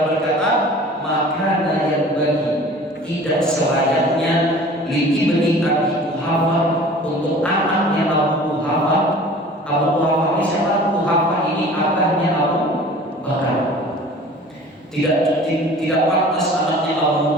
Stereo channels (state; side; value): normal; both; correlation 0.44